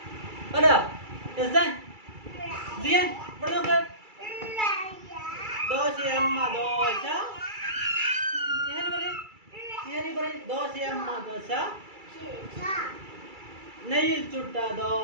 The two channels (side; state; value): left; late; 2.3 ms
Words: പാടാ. സിയാൻ ഇവിടെ നോക്ക്. ദോശയമ്മ ദോശ. ദോശയമ്മ ദോശ. നെയ്യിൽ ചുട്ട